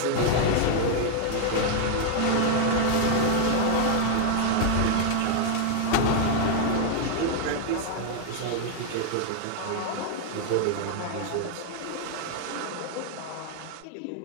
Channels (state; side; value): different; both; correlation 0.00